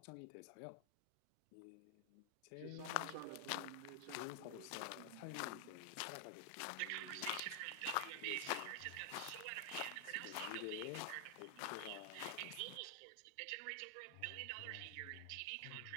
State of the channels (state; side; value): different; both; correlation 0.00